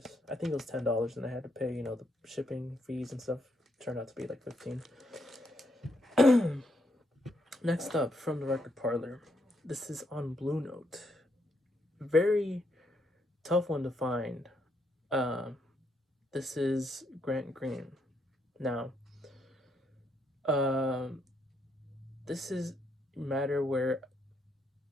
I think it was $10, and I had to pay, the shipping fees and stuff. Turned out to be like 15. Next up, from the Record Parlor, this is on Blue Note. Very tough one to find. This is Grant Green. Now, this is a matter where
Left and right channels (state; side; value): normal; both; correlation 0.76